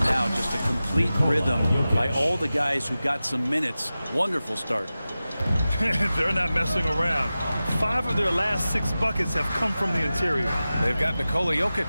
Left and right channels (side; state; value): both; inverted; correlation -0.95